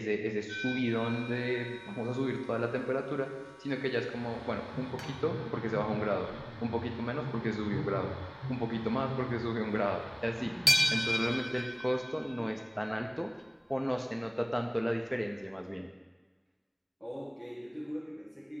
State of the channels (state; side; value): identical; both; correlation 1.00